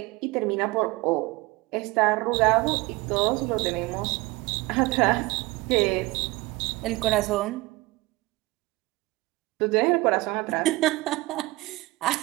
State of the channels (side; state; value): left; quieter; 21.6 dB